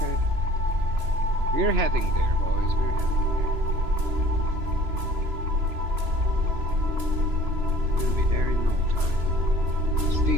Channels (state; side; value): late; left; 3.0 ms